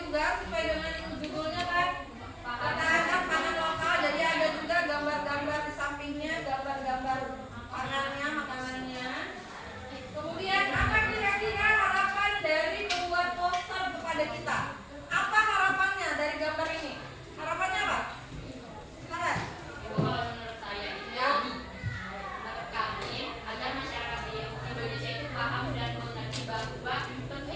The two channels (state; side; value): identical; both; correlation 1.00